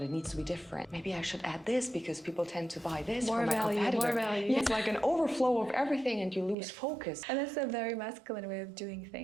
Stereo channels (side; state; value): left; drops out; at 6.6 s